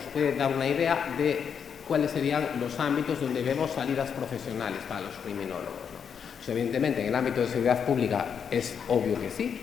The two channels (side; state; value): right; quieter; 7.2 dB